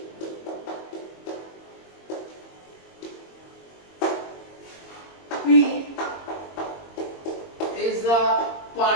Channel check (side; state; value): right; late; 22 ms